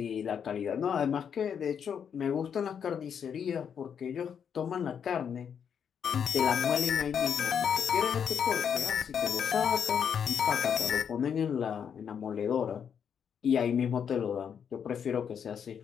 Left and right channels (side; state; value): right; quieter; 7.7 dB